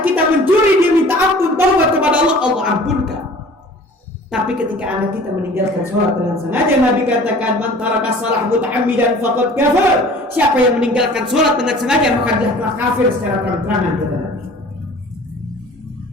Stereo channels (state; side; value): normal; both; correlation 0.46